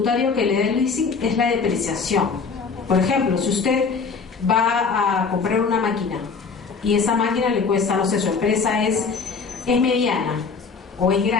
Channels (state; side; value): quieter; right; 5.1 dB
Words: que le da el leasing es la depreciación. Por ejemplo, si usted va a comprar una máquina y esa máquina le cuesta, no sé, su empresa es mediana o es